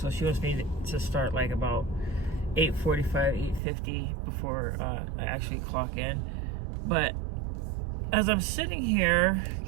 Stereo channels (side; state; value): left; drops out; at 3.6 s